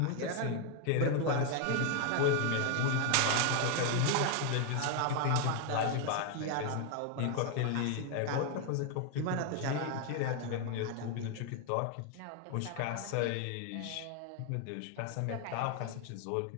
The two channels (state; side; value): different; both; correlation 0.01